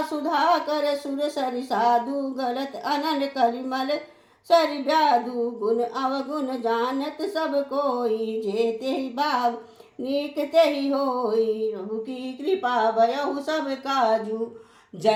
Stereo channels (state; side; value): identical; both; correlation 1.00